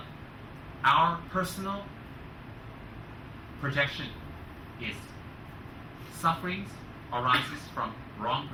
our personal projection is. Sufferings arises from wrong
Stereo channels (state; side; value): identical; both; correlation 1.00